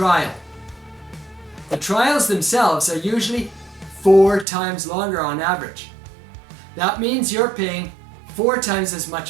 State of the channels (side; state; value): left; drops out; at 4.5 s